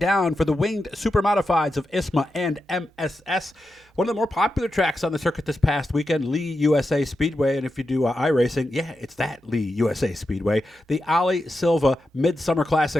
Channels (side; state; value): both; normal; correlation 0.89